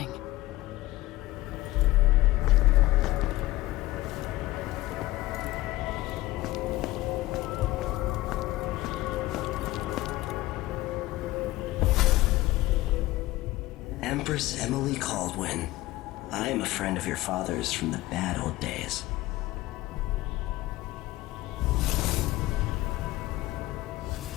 Empress Emily Caldwin. I am a friend of your father's from the bad old days.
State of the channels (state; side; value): quieter; right; 17.7 dB